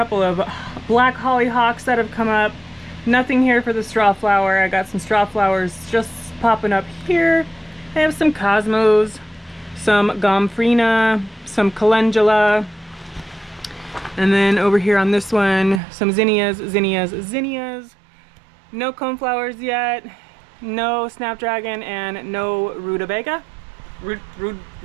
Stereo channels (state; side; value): drops out; left; at 15.8 s